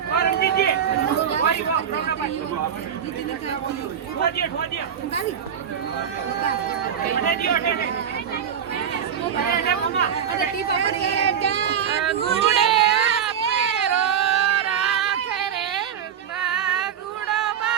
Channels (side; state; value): left; quieter; 8.3 dB